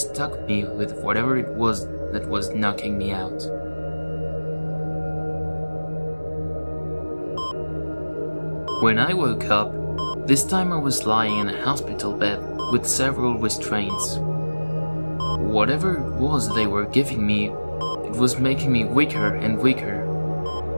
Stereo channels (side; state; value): both; inverted; correlation -1.00